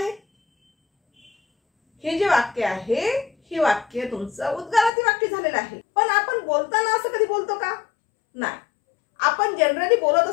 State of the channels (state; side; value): drops out; right; at 4.9 s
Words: हे जे वाक्य आहे हे वाक्य तुमचं उद्गारार्थी वाक्य झालेलं आहे. पण आपण बोलताना असं कधी बोलतो का? नाही. आपण जनरली बोलत